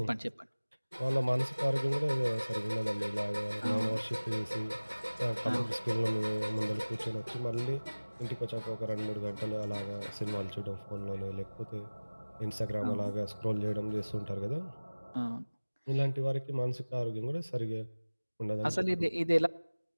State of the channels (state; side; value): inverted; both; correlation -1.00